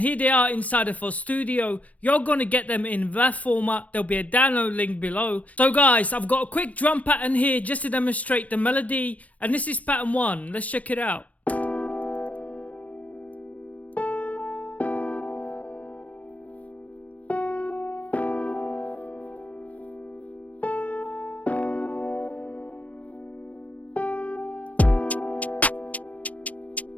they are inside of our studio. You're gonna get them in WAV format. There'll be a download link below. So guys, I've got a quick drum pattern here just to demonstrate the melody, and this is pattern 1. Let's check it out.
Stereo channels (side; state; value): right; late; 0.068 ms